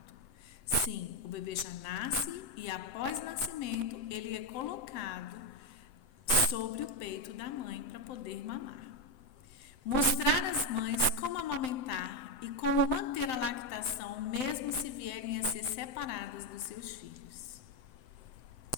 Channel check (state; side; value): late; right; 7.8 ms